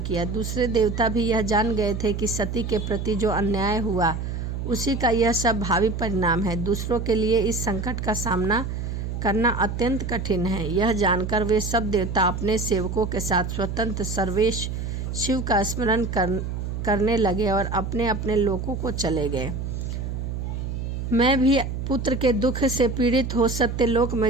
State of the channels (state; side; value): noise; right; hum, 4 dB below the sound